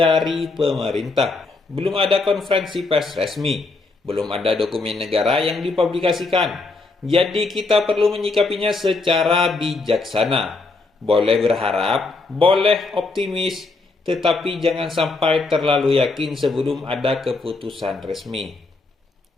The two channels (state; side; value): quieter; right; 3.6 dB